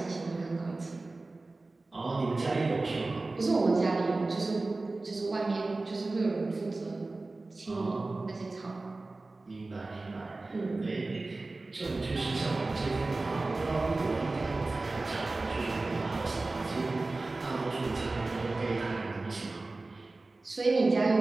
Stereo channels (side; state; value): left; quieter; 3.3 dB